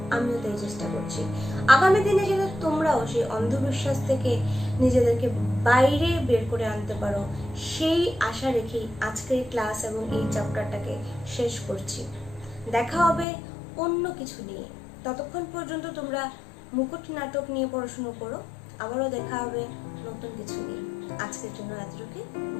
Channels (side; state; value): right; drops out; at 13.2 s